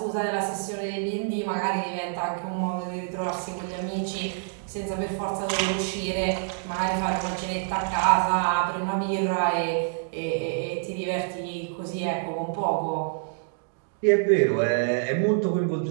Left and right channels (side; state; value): left; silent; digital silence